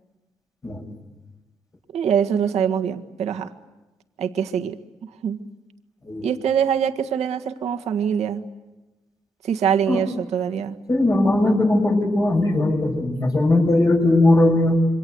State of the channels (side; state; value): both; normal; correlation 0.79